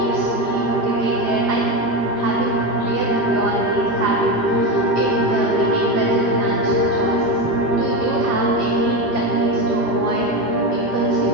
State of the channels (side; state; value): right; late; 5.0 ms